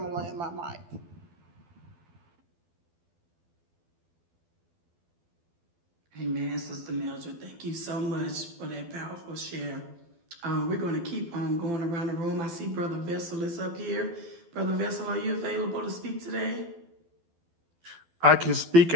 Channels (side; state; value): left; late; 12 ms